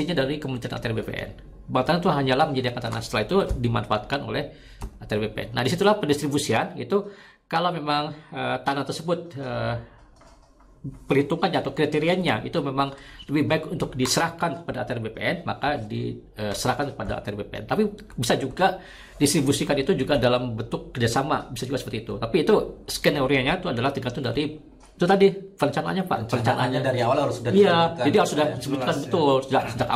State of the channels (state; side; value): identical; both; correlation 1.00